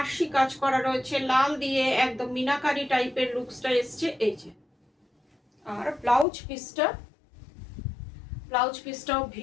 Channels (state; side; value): drops out; right; at 6.2 s